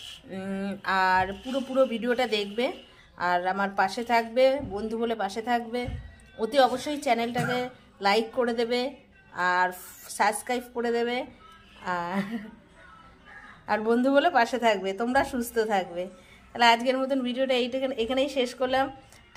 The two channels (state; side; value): identical; both; correlation 1.00